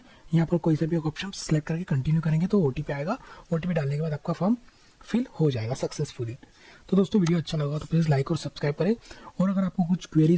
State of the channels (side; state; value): both; identical; correlation 1.00